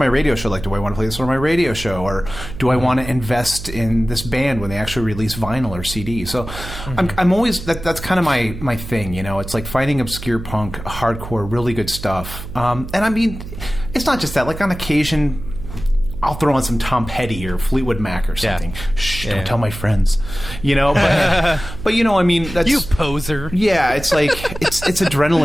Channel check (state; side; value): noise; right; hum, 11 dB below the sound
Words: radio show. Like, do I want to play this on my radio show, or do I want to invest in this band when they actually release vinyl or CD? So I'm always, that's kind of my thing, it's like finding obscure punk, hardcore, really good stuff. And I mean, it's not just that, like on occasion, I'll throw on some Tom Petty or Fleetwood Mac or something. Yeah. Shh, don't tell my friends. But I mean, that's, you poser. Yeah, it's like it's